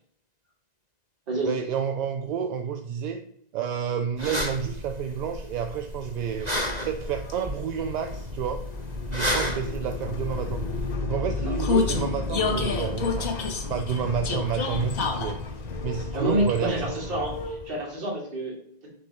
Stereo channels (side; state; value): left; late; 1.9 ms